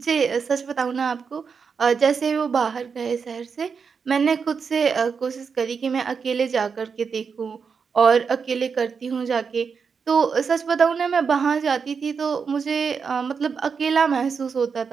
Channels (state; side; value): quieter; left; 5.8 dB